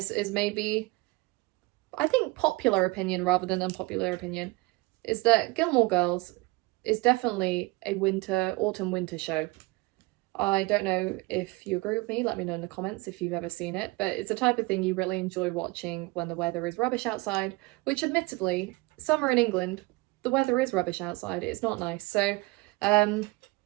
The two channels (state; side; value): quieter; left; 23.8 dB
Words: is maybe, I think, popular opinion rather than unpopular opinion, is that Gilmore Girls is definitely a autumn-winter show. I don't know if you agree with me, let me know in the comments if you've ever seen it, but it's the type of thing you really enjoy watching when the weather is rubbish outside, which admittedly, summer in England, the weather is rubbish outside, it's not nice. So I